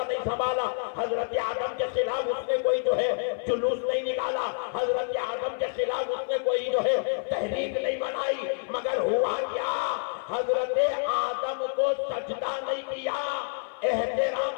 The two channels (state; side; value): silent; right; 55 dB below the other